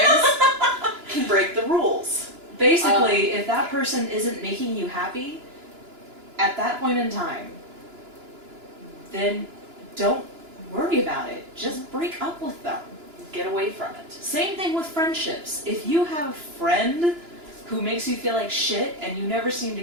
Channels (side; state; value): left; late; 2.9 ms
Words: can break the rules. Basically, if that person isn't making you happy, at that point in time, then don't worry about it. Just break up with them. Get away from it. Same thing with friendships. If you have a friend who makes you feel like shit and you never seem